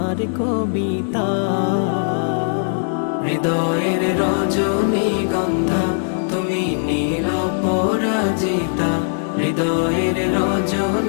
কবিতা। হৃদয়ের রজনীগন্ধা তুমি নীল পরাজিতা, হৃদয়ের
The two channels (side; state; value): right; silent; 57 dB below the other